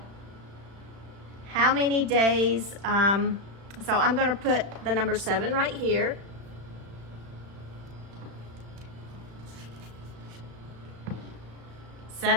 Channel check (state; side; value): late; left; 35 ms